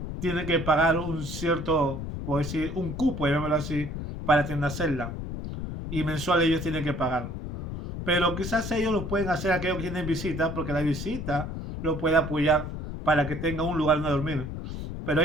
que pagar un cierto, por decir, un cupo, llamémoslo así, para tener una celda. Y mensual ellos tienen que pagar. Pero quizás ellos lo pueden hacer aquellos que tienen visita, porque la visita lo puede apoyar para que tenga un lugar donde dormir. Pero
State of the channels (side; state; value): left; noise; rumble, 6 dB below the sound